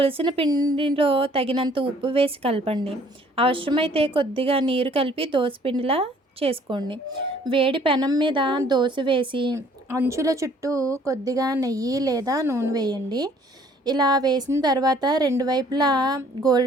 పిండిలో తగినంత ఉప్పు వేసి కలపండి. అవసరమైతే కొద్దిగా నీరు కలిపి దోసపిండిలా చేసుకోండి. వేడి పెనం మీద దోస వేసి అంచుల చుట్టూ కొద్దిగా నెయ్యి లేదా నూనె వేయండి. ఇలా వేసిన తర్వాత రెండు వైపులా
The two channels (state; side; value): normal; both; correlation 0.58